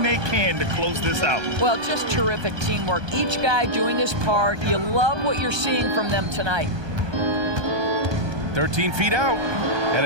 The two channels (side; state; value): left; late; 1.2 ms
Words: they can to close this out. Well, just terrific teamwork. Each guy doing his part. You love what you're seeing from them tonight. 13 feet out, and